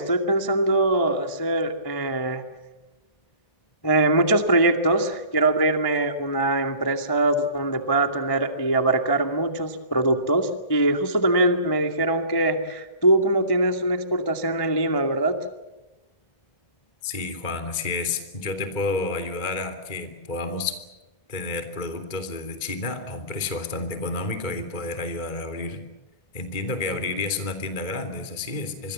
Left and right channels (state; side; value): late; right; 2.2 ms